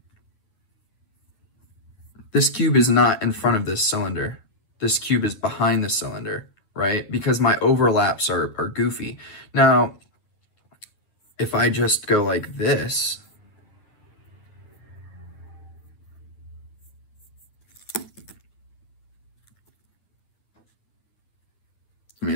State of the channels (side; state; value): right; late; 9.2 ms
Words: this cube is not in front of this cylinder. This cube is behind the cylinder, right? Because my overlaps are goofy. Now, if I just go like this, I mean,